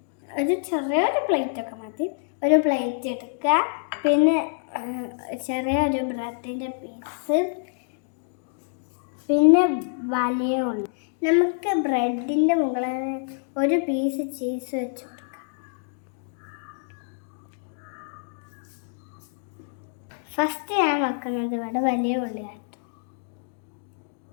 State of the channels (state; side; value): silent; right; digital silence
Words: ഒരു ചെറിയൊരു പ്ലേറ്റൊക്കെ മതി. ഒരു പ്ലേറ്റ് എടുക്കുക, പിന്നെ ചെറിയൊരു ബ്രെഡിൻ്റെ പീസ്, പിന്നെ വലിയ ഉള്ളി. നമുക്ക് ബ്രെഡിൻ്റെ മുകളിൽ ഒരു പീസ് ചീസ് വെച്ച് കൊടുക്കാം. ഫസ്റ്റ് ഞാൻ വെക്കുന്നത് ഇവിടെ വലിയ ഉള്ളിയായിട്ട്.